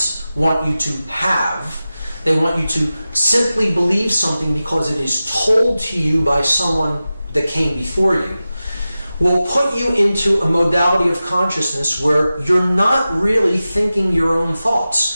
want you to have. They want you to simply believe something because it is told to you by someone that came before you, will put you into a modality of consciousness where you're not really thinking your own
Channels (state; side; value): inverted; both; correlation -0.94